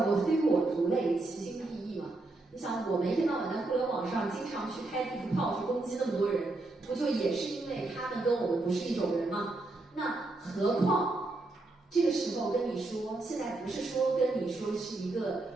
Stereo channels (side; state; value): left; quieter; 3.0 dB